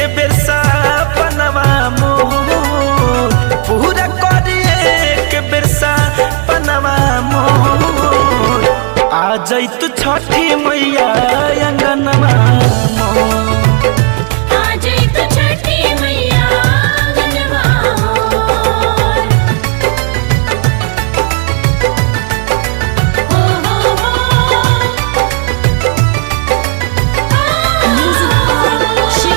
बेर सपनवा मोर, पूरा करिए के बेर सपनवा मोर। आ जैतु छठी मैया अंगनवा मोर,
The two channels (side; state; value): left; quieter; 36.7 dB